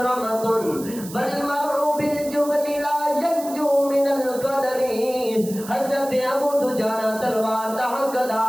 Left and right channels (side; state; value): right; noise; hiss, 14 dB below the sound